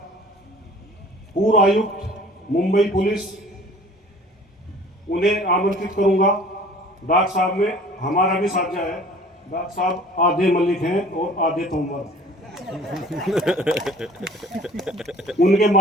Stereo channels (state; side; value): normal; both; correlation 0.49